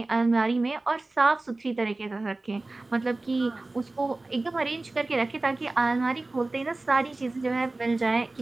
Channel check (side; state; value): left; quieter; 3.1 dB